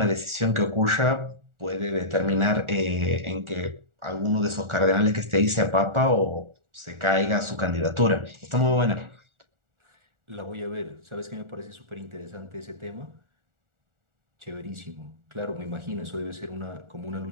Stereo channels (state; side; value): late; left; 1.4 ms